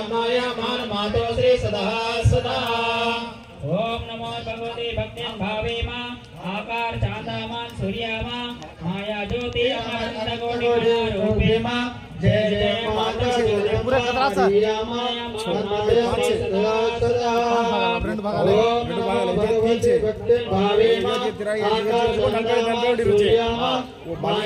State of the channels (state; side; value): identical; both; correlation 1.00